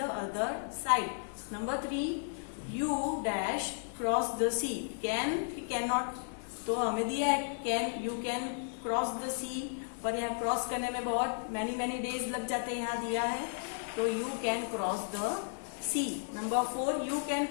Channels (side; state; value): right; silent; digital silence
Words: other side. Number 3, you dash cross the sea, can not, तो हमें दिया है can, you can cross the sea, पर यहाँ क्रॉस करने में बहुत मैनी डेज लग जाते हैं, यहाँ दिया है, तो you can cross the sea. Number 4, you can